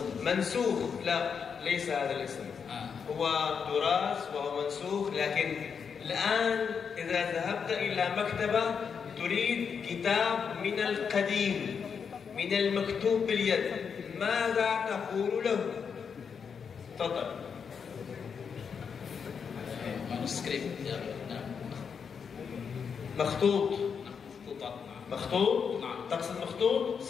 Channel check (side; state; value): right; quieter; 6.5 dB